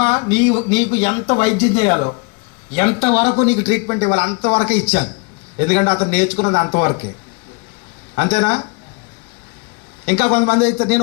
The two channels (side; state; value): right; quieter; 31.0 dB